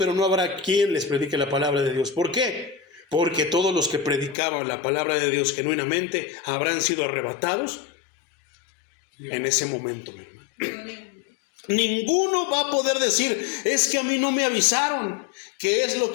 no habrá quien les predique la palabra de Dios. ¿Por qué? Porque todos los que predicaban la palabra de Dios genuinamente habrán sido arrebatados en ese momento, mi hermano. Ninguno va a poder decir, es que a mí no me avisaron, que es lo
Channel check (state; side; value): drops out; right; at 4.4 s